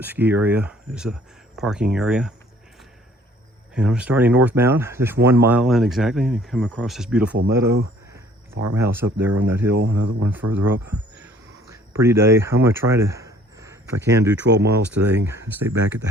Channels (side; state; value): both; normal; correlation 0.57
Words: Ski Area is a parking area. And I'm starting northbound, just 1 mile in exactly, and come across this beautiful meadow. Farmhouse up there on that hill, another one further up. Pretty day. I'm gonna try to, if I can, do 12 miles today and stay back at the